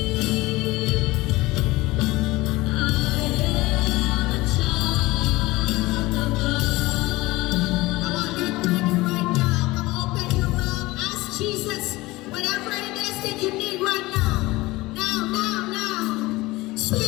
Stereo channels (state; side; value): quieter; right; 20.2 dB